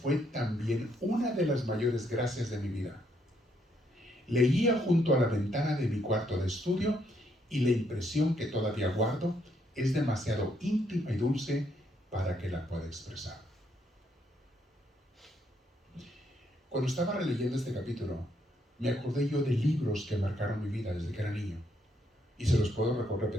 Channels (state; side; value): normal; both; correlation 0.73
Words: también una de las mayores gracias de mi vida. Leía junto a la ventana de mi cuarto de estudio y la impresión que todavía guardo es demasiado íntima y dulce para que la pueda expresar. Cuando estaba releyendo este capítulo, me acordé yo de libros que marcaron mi vida desde que era niño. Y se los puedo